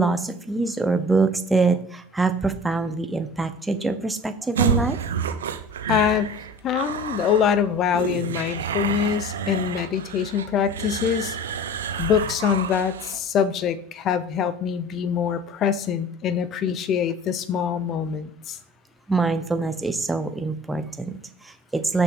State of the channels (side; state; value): both; normal; correlation 0.43